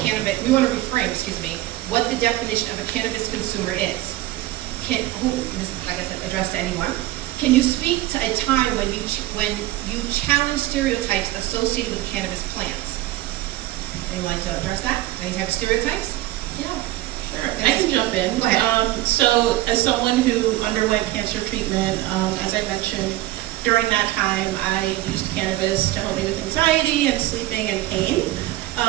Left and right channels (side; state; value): left; quieter; 16.3 dB